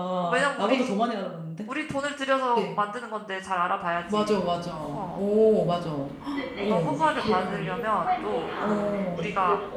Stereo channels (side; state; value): both; identical; correlation 1.00